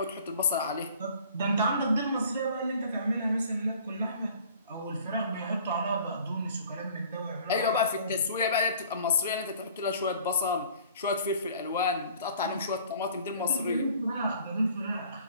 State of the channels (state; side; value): inverted; both; correlation -0.51